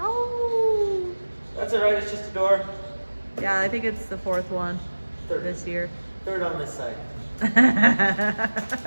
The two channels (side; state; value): both; inverted; correlation -1.00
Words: That's all right, it's just a door. Yeah, I think it's the fourth one this year. Third on this side.